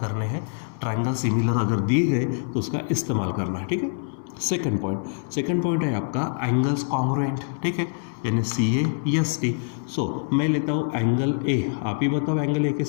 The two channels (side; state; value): right; silent; digital silence